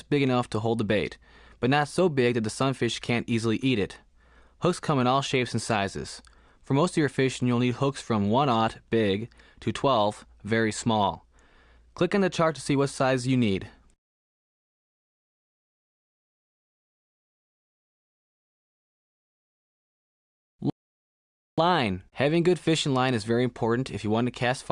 big enough to hold the bait, but not so big that the sunfish can't easily eat it. Hooks come in all shapes and sizes. For most of your fishing, you'll need hooks from 1/0 big to 12 very small. Click on the chart to see what size you need. Line. Having good fishing line is very important if you want to cast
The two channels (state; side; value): identical; both; correlation 1.00